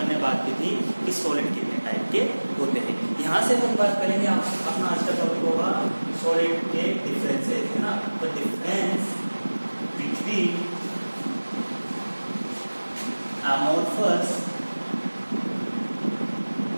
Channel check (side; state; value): both; inverted; correlation -1.00